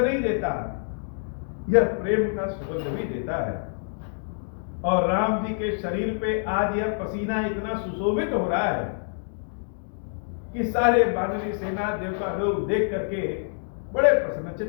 देता, यह प्रेम का सुगंध भी देता है। और राम जी के शरीर पे आज यह पसीना इतना सुशोभित हो रहा है कि सारे बानरी सेना देवता लोग देख करके बड़े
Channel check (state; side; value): silent; right; digital silence